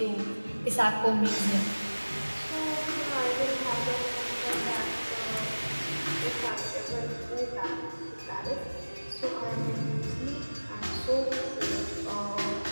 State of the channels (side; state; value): both; inverted; correlation -1.00